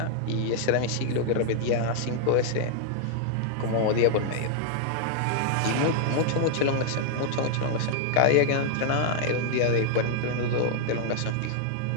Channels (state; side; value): different; both; correlation 0.00